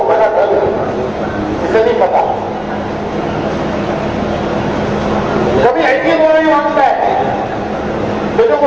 بلا ڈر گئی, اسے نہیں پتا. کبھی ایسی دعا نہیں مانگتا ہے تو جو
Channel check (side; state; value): left; noise; rumble, 25 dB below the sound